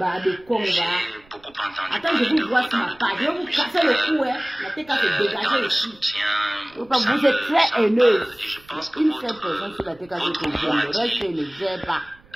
J'ai beaucoup entendu. Attends, je vous vois sur ma page. Je vais vous casser le cou, hein. La tête cassée dégagée ici. Vous êtes très haineuse. Une seule personne sur la tête cassée que j'aime. Le reste, je ne gère pas.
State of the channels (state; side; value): noise; right; rumble, 27 dB below the sound